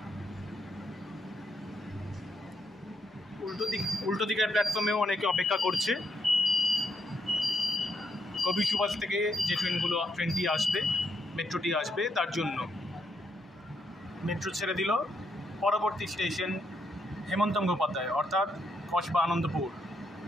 উল্টো দিকের প্ল্যাটফর্মেও অনেকে অপেক্ষা করছে কবি সুভাষ থেকে যে ট্রেনটি আসবে, মেট্রোটি আসবে তার জন্য। মেট্রো ছেড়ে দিল। পরবর্তী স্টেশন হেমন্ত মুখোপাধ্যায়, অর্থাৎ কসবা আনন্দপুর।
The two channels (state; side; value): normal; both; correlation 0.78